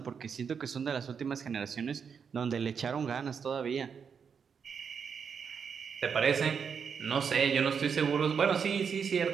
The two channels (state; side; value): quieter; left; 6.6 dB